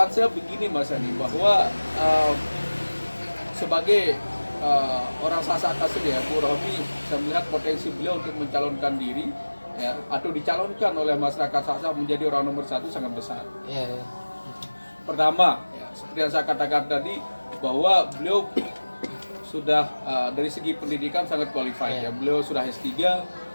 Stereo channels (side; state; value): both; inverted; correlation -1.00